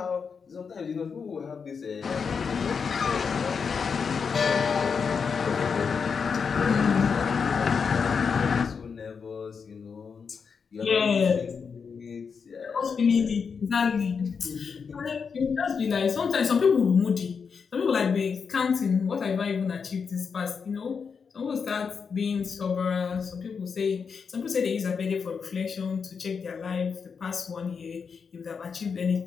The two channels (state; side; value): quieter; right; 5.9 dB